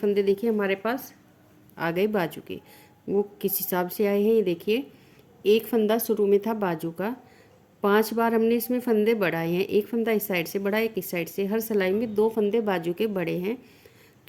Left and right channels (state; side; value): identical; both; correlation 1.00